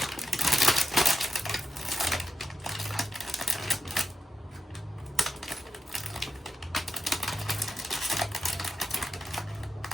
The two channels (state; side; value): normal; both; correlation 0.87